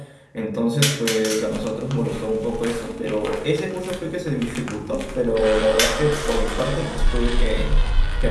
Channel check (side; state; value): both; identical; correlation 1.00